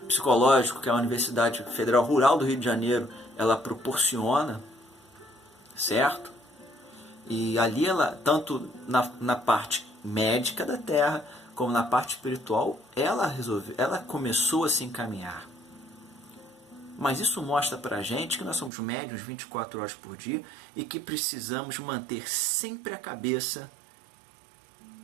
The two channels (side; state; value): left; drops out; at 18.7 s